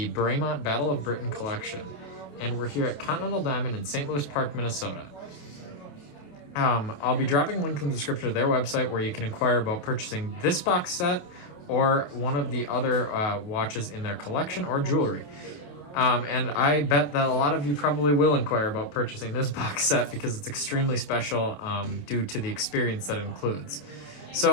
Bremont Battle of Britain collection, and we're here at Continental Diamond in St. Louis Park, Minnesota. I'll be dropping a link in the description of their website where you can inquire about purchasing this box set or one of the other watches in their collection or jewelry. And I bet that a lot of you probably will inquire about purchasing this box set because it's extremely special due to the experience that it includes.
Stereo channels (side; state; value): right; late; 28 ms